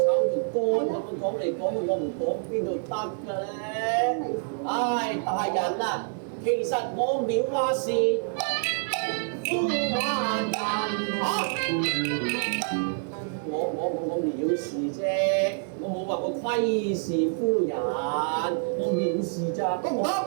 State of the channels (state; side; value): silent; left; 60 dB below the other